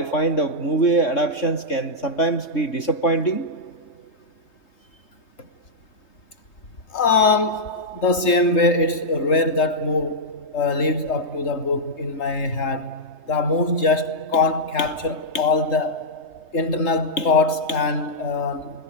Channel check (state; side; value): late; right; 3.2 ms